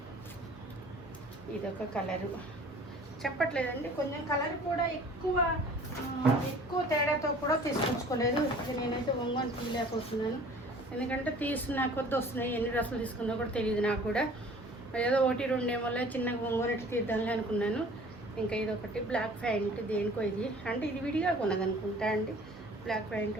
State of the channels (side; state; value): both; normal; correlation 0.49